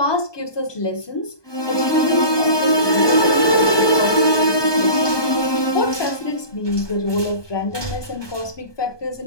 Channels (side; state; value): right; late; 1.2 ms